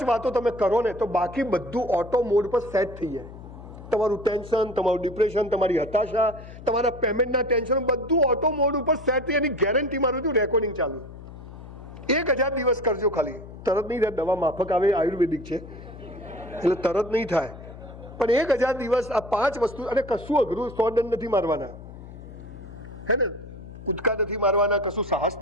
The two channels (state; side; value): noise; left; hum, 15 dB below the sound